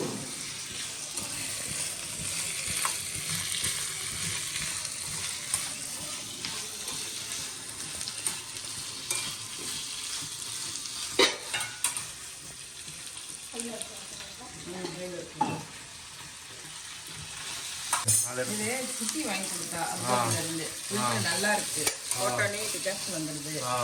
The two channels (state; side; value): identical; both; correlation 1.00